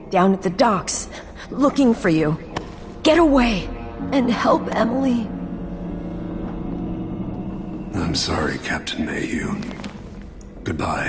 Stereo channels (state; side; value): identical; both; correlation 1.00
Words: down at the docks, looking for you. Get away and help Emily. I'm sorry, Captain Mayhew.